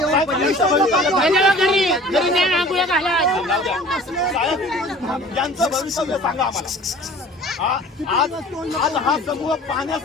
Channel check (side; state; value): both; normal; correlation 0.46